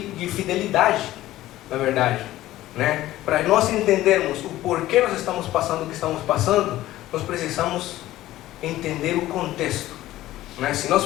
na verdade, né? Para nós entendermos o porquê nós estamos passando o que estamos passando, nós precisamos entender o contexto, né? Se nós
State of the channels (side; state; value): right; quieter; 15.3 dB